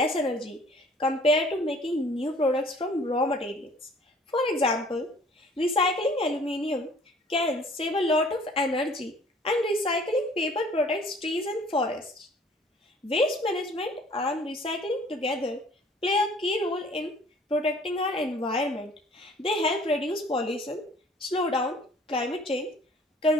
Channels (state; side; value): normal; both; correlation 0.53